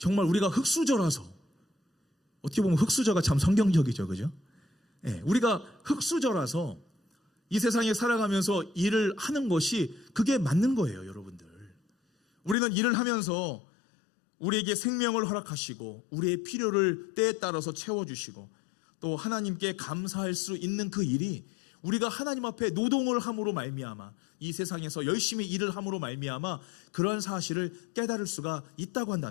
우리가 흙수저라서, 어떻게 보면 흙수저가 참 성경적이죠, 그죠? 네, 우리가 흙수저라서 이 세상에 살아가면서 일을 하는 것이 그게 맞는 거예요, 여러분들. 우리는 일을 하면서 우리에게 생명을 허락하시고 우리의 필요를 때에 따라서 채워주시고 또 하나님께 감사할 수 있는 그 일이 우리가 하나님 앞에 노동을 함으로 말미암아, 이 세상에서 열심히 일을 함으로 말미암아 그러한 사실을 깨달을 수가 있다고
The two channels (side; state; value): right; drops out; at 12.6 s